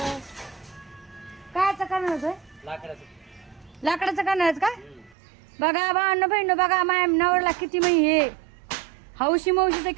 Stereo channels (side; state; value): left; drops out; at 5.2 s